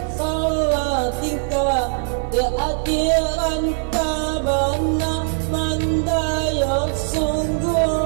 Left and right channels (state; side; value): silent; left; 65 dB below the other